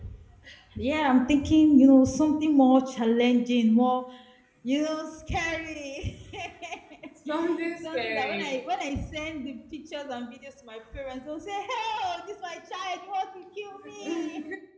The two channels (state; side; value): identical; both; correlation 1.00